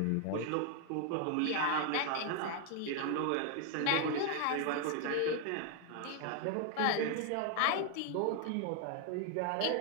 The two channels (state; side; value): different; both; correlation 0.00